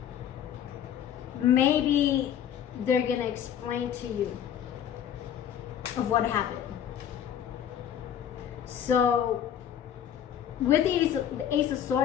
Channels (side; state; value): right; quieter; 9.5 dB